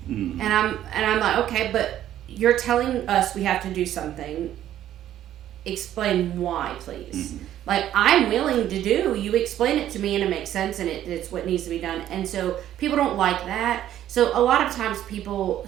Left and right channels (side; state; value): left; quieter; 11.9 dB